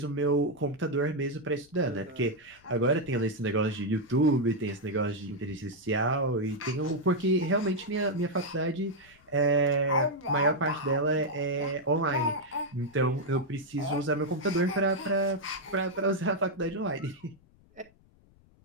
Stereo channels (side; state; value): left; noise; rumble, 30 dB below the sound